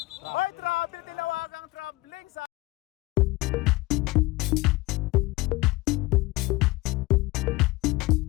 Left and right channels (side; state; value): right; quieter; 21.5 dB